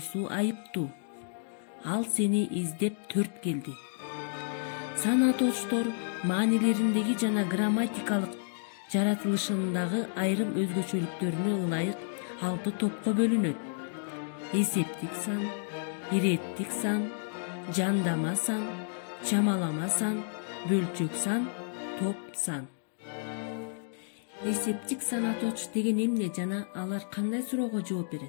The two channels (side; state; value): right; silent; digital silence